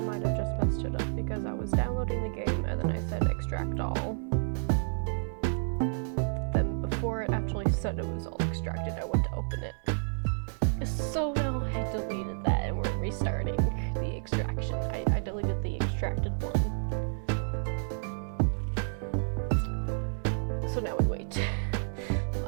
have just messed it up because I was downloading the game and then I said extract all. Then before it actually said it was all extracted, I went to open it. So now I deleted that and we're restarting the extraction. I deleted the extracted one. So now we wait.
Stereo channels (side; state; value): left; silent; 58 dB below the other